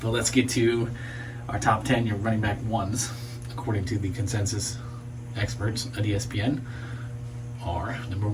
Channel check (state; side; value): identical; both; correlation 1.00